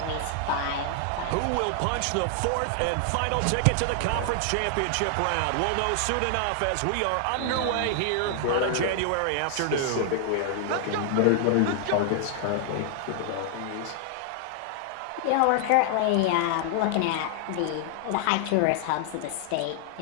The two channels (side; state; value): both; different; correlation 0.00